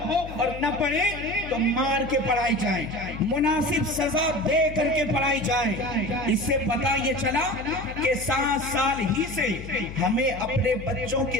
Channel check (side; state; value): left; noise; hum, 12 dB below the sound